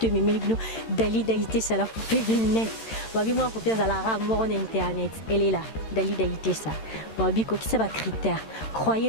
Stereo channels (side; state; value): right; late; 13 ms